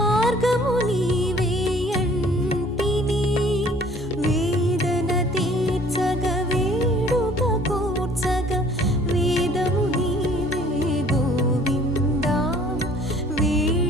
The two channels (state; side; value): normal; both; correlation 0.55